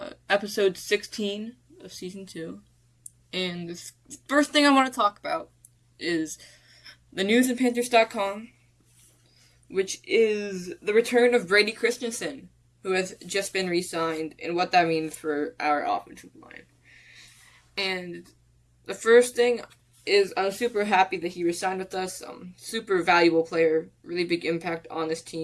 episode 16 of season 2. And the first thing I want to talk about is the news in Panthers.com, which is the return of Brady Christensen, who has just been re-signed, and what that means for our offensive line. And the first thing is I'm super happy that he re-signed with us. Super valuable player, really big impact on this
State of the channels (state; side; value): identical; both; correlation 1.00